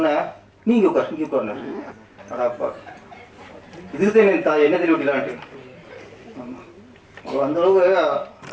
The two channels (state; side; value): identical; both; correlation 1.00